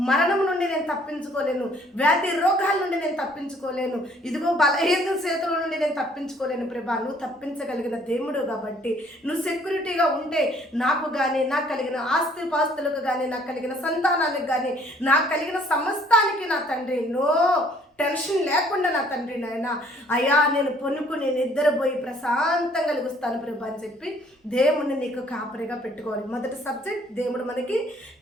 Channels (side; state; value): both; normal; correlation 0.60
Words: మరణం నుండి నేను తప్పించుకోలేను, వ్యాధి రోగాల నుండి నేను తప్పించుకోలేను, ఇదిగో బలహీన చేతుల నుండి నేను తప్పించుకోలేను ప్రభా. నువ్వు తప్పించగలిగిన దేవుడు కాబట్టి నువ్వు సెక్యూరిటీగా ఉంటే నాకు కానీ, నాకు కలిగిన ఆస్తి పాస్తులకు కానీ, నాకు కలిగిన సంతానానికి కానీ, నాకు కలిగిన సమస్తానికి నా తండ్రి నో టెన్షన్ లేకుండా నా తండ్రి నాయన అయ్యా నేను పొనుకుని నిద్రపోయి ప్రశాంతంగా కలిగిస్తాను ప్రభా అని చెప్పి దేవుడిని నీకు కాపరిగా పెట్టుకోవాలి. మొదటి సబ్జెక్ట్, దేవుడు మనకి